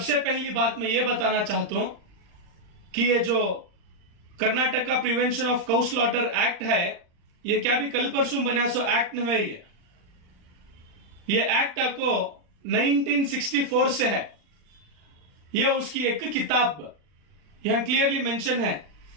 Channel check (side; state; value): left; late; 39 ms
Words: पहली बात मैं ये बताना चाहता हूं कि ये जो Karnataka prevention of cow slaughter act है ये क्या भी कल परसों बना सो एक्ट नहीं है। ये एक्ट को 1964 से है। यह उसकी एक किताब यहां क्लियरली मेंशन है,